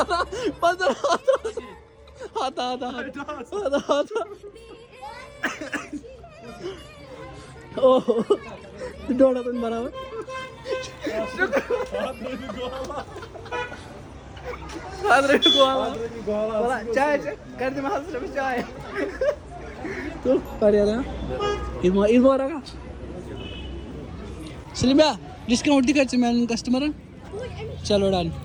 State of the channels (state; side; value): identical; both; correlation 1.00